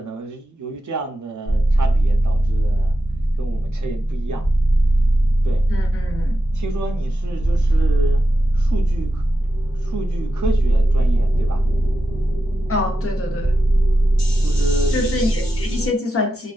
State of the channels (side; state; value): both; normal; correlation 0.90